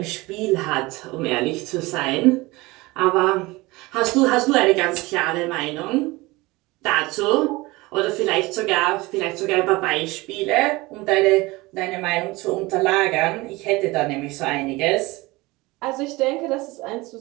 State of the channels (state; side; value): quieter; left; 21.9 dB